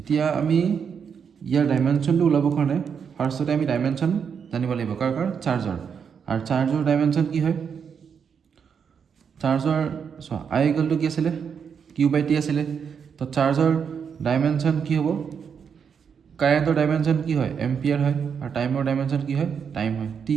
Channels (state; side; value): quieter; left; 6.9 dB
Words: আমি ইয়াৰ ডাইমেনশ্যনটো ওলাবৰ কাৰণে ফাৰ্ষ্টতে আমি ডাইমেনশ্যন জানিব লাগিব। কাৰ চাৰ্জৰ। আৰু চাৰ্জৰ ডাইমেনশ্যন কি হয়? চাৰ্জৰ চোৱা I কি আছিলে? Q/T আছিলে। তো চাৰ্জৰ ডাইমেনশ্যন কি হ'ব? কাৰেণ্টৰ ডাইমেনশ্যন কি হয়? এম্পিয়াৰ হয়। আৰু টাইমৰ ডাইমেনশ্যন কি হয়? টাইম হয়, T।